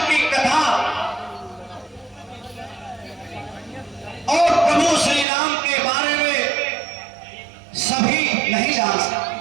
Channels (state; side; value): drops out; left; at 5.2 s